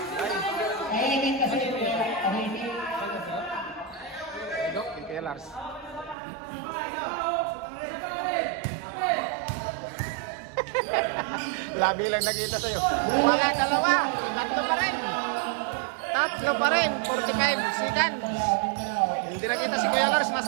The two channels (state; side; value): drops out; left; at 6.2 s